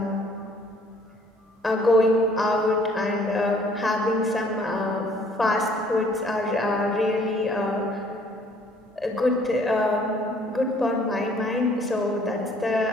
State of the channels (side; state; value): both; normal; correlation 0.59